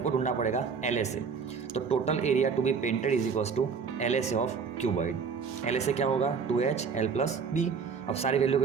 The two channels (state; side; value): quieter; left; 5.7 dB